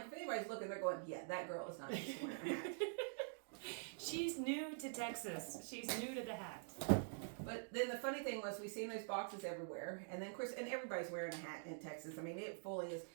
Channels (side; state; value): left; silent; digital silence